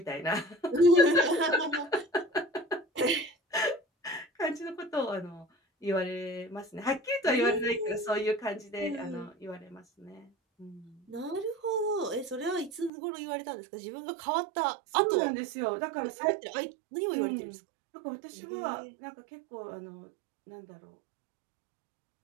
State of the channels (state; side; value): drops out; left; at 12.9 s